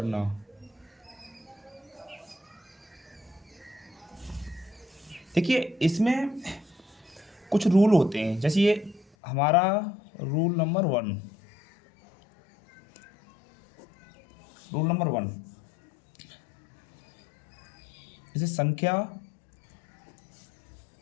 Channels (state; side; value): drops out; right; at 9.1 s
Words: देखिए इसमें कुछ रूल होते हैं, जैसे ये हमारा रूल नंबर वन, जैसे संख्या